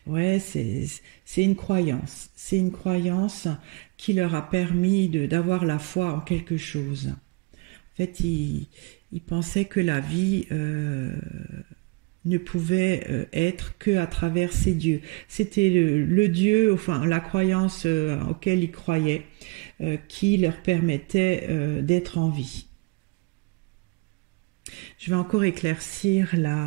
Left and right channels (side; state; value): left; quieter; 28.1 dB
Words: Ouais, c'est une croyance. C'est une croyance qui leur a permis d'avoir la foi en quelque chose. En fait, ils pensaient que la vie ne pouvait être que à travers ces dieux. C'était le dieu, enfin la croyance auquel ils croyaient, qui leur permettait d'être en vie. Je vais encore éclaircir